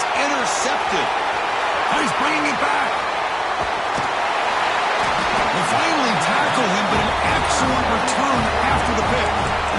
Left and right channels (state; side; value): identical; both; correlation 1.00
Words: intercepted. And he's bringing it back. They finally tackle him, but an excellent return after the pick.